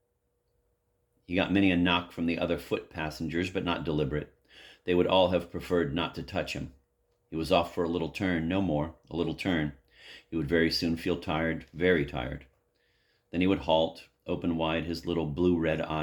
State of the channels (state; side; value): identical; both; correlation 1.00